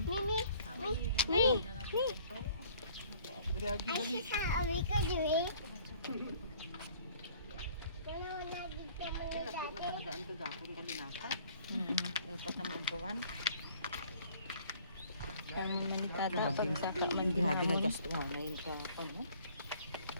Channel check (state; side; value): inverted; both; correlation -0.55